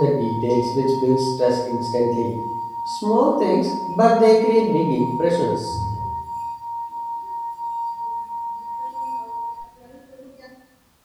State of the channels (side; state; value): both; identical; correlation 1.00